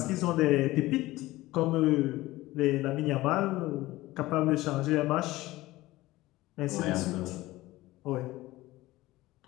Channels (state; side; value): quieter; right; 18.0 dB